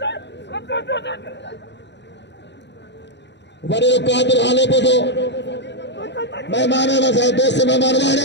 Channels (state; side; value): late; right; 0.51 ms